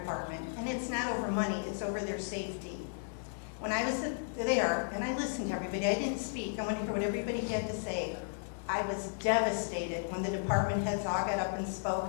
and it's not over money, it's over their safety. When I was there, and I listened to everybody, I didn't speak, I wanted to hear what everybody had to say. I was devastated when the department heads all got up and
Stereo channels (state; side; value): silent; right; digital silence